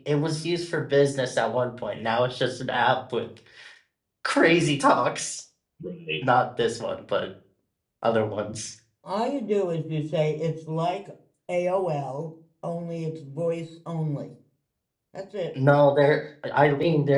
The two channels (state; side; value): identical; both; correlation 1.00